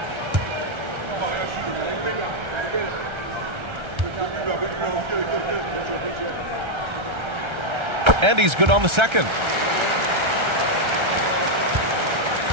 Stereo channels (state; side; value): late; left; 1.3 ms